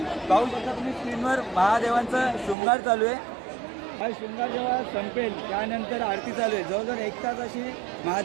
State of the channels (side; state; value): left; drops out; at 2.6 s